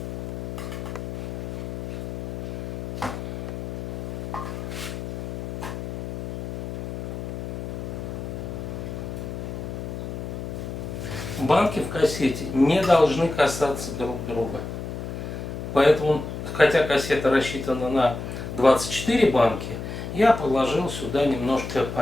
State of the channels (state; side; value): noise; left; hum, 6 dB below the sound